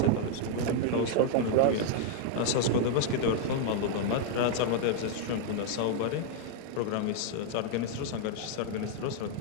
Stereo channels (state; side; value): different; both; correlation 0.00